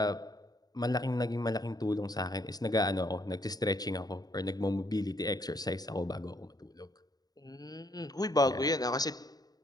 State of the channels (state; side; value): late; right; 0.19 ms